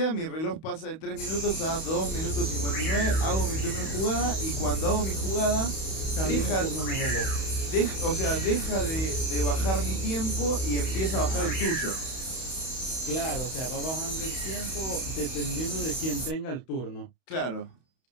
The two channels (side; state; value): right; late; 31 ms